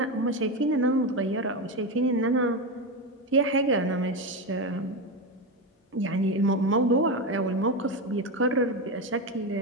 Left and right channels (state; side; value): normal; both; correlation 0.14